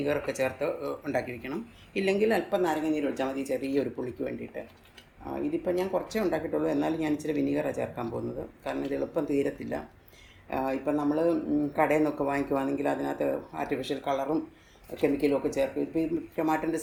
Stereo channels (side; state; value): both; identical; correlation 1.00